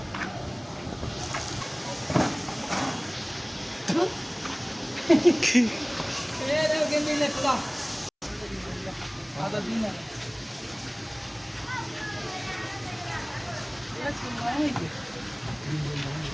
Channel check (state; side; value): identical; both; correlation 1.00